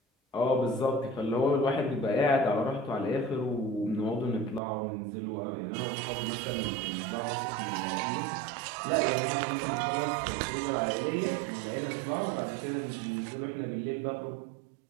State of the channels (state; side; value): drops out; left; at 4.6 s